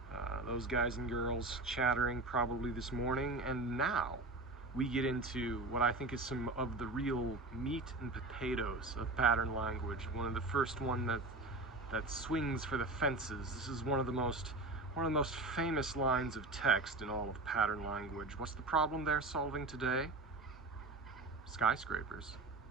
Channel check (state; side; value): quieter; left; 3.1 dB